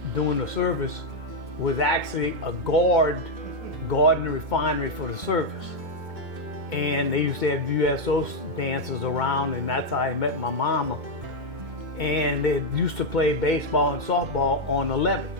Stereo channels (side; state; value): left; late; 2.2 ms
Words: doing the service, was actually a guarding the refinery for the service. And they used to have USO dances around, and that's how I met my mama. And they used to play baseball and softball on the levee.